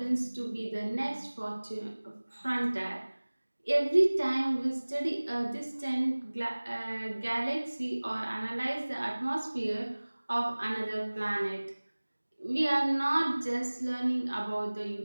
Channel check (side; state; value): both; inverted; correlation -1.00